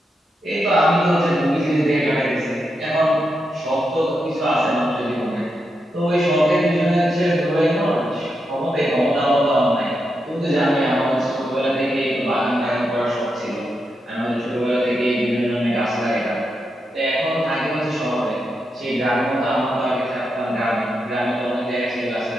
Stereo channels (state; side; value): normal; both; correlation 0.85